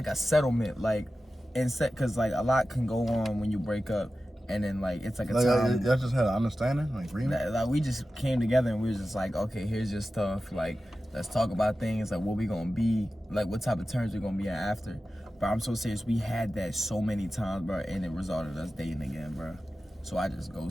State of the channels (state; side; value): normal; both; correlation 0.94